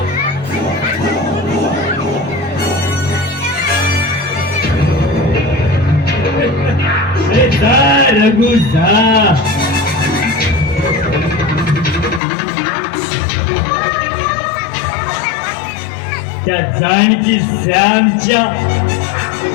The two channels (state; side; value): drops out; right; at 12.2 s